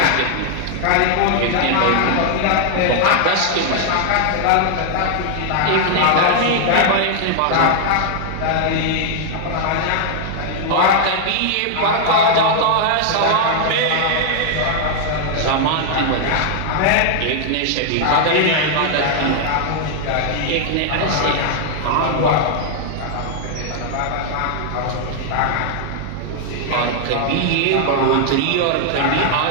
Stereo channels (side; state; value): both; different; correlation 0.00